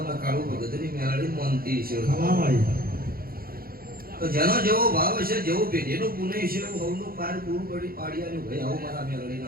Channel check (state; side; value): late; left; 0.43 ms